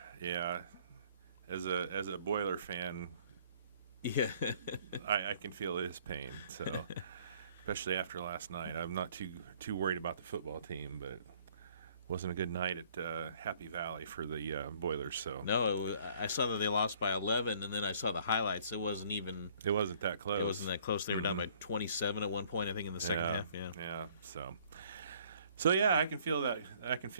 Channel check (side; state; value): both; inverted; correlation -0.59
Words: Yeah. As a Boiler fan, Yeah, I can feel his pain. So, especially after last night, I'm not too worried about the football team, but wasn't a good night at Happy Valley for the Boilers. So I saw that they lost by 11, and then I saw the highlights. It wasn't even. it wasn't that close. It wasn't that close. They were down by 27 at one point, I think, in the second Yeah, half. Yeah. yeah. So yeah, I can feel that. I can